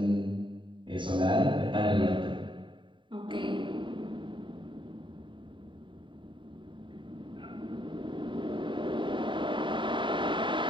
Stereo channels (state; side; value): late; left; 0.23 ms